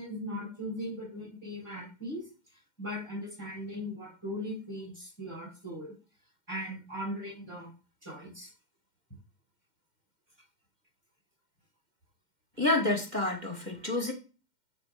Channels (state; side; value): late; left; 2.1 ms